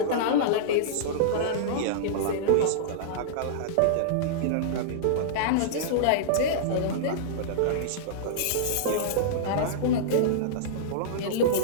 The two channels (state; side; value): different; both; correlation -0.03